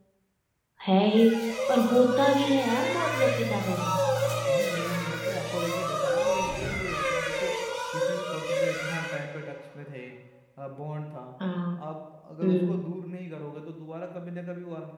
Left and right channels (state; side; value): identical; both; correlation 1.00